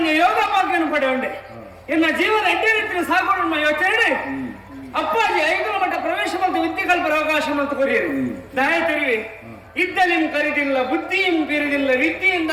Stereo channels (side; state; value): both; identical; correlation 1.00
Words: ಯೋಗ ಭಾಗ್ಯನು ಪಡೆ ಉಂಡೆ ಎನ್ನ ಜೀವನ ಎಡ್ಡೆ ರೀತಿಯ ಸಾಗೋಣ ಯೋಚನೆ ಅಪ್ಪಾಜಿ 5 ಮಟ್ಟ ಪ್ರವೇಶ ಮತ್ತು ವಿದ್ಯೆ ಕಲ್ಪರ ಅವಕಾಶ ಮತ್ತು ಕೊರಿಯರು ದಯ ತೆರಿವೆ ಇದ್ದಲಿಂ ಕರಿದಿಲ್ಲ ಬುದ್ಧಿಯಂ ಬೀರಿದಿಲ್ಲ ವಿದ್ಯೆಯಿಂದ